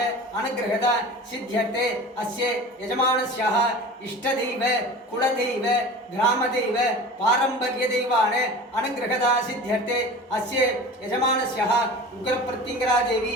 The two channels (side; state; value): both; normal; correlation 0.36